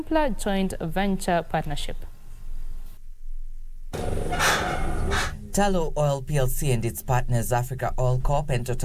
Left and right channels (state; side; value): identical; both; correlation 1.00